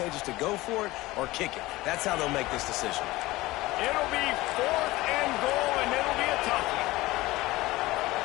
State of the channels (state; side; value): quieter; right; 19.1 dB